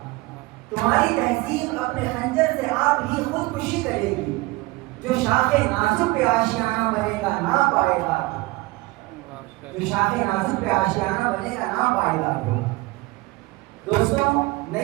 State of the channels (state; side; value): quieter; left; 21.9 dB